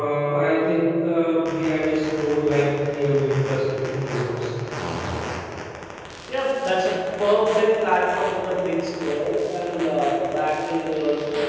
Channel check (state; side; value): identical; both; correlation 1.00